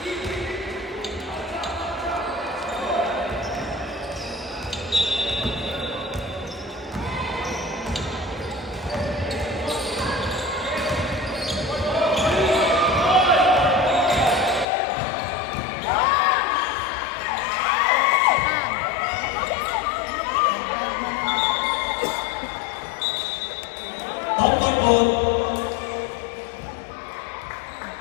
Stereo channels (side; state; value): right; drops out; at 14.7 s